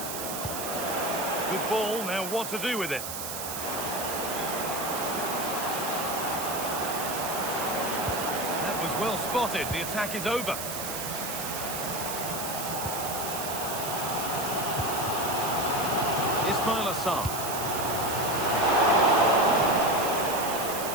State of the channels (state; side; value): noise; right; hiss, 6 dB below the sound